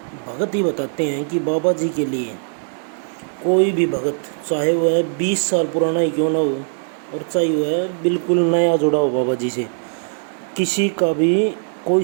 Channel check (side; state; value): left; silent; digital silence